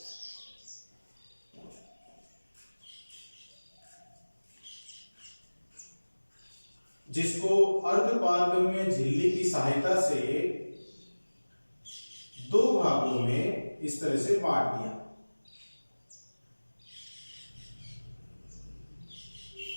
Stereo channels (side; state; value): both; inverted; correlation -1.00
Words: जिसको अर्धपारगम्य झिल्ली की सहायता से दो भागों में इस तरह से बांट दिया।